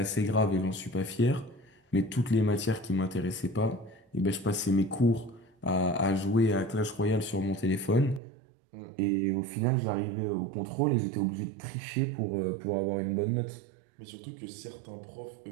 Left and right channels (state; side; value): drops out; left; at 8.2 s